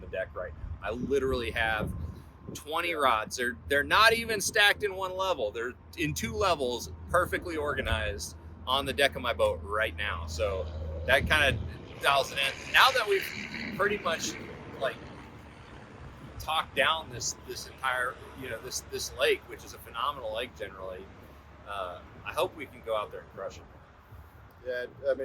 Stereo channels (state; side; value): identical; both; correlation 1.00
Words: the deck right now. I literally have 20 rods. They're not even stacked in one level. They're in 2 levels, perfectly organized on the deck of my boat right now. So that kind of dials it in. Now that we've pretty much like talked down this entire, this lake, which is a phenomenal lake generally, I hope we can go out there and crush it. Yeah, I